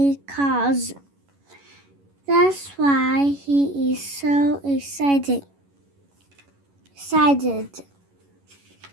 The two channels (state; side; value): late; left; 11 ms